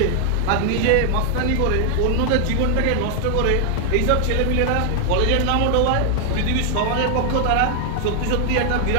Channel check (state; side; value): different; both; correlation 0.00